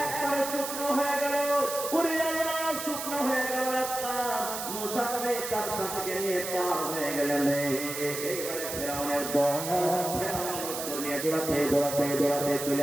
তার সাথে নিয়ে পার হয়ে গেলেন। এইবারে ফেরাউনের দল নিয়ে দৌড়াতে দৌড়াতে দৌড়াতে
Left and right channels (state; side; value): noise; right; hiss, 6 dB below the sound